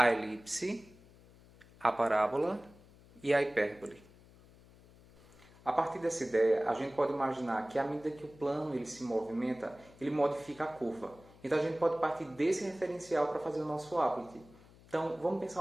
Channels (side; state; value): left; noise; hum, 24 dB below the sound